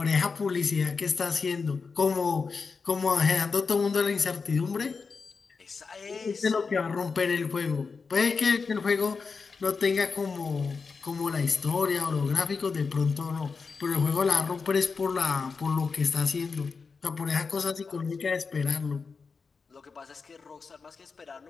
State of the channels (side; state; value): right; quieter; 4.9 dB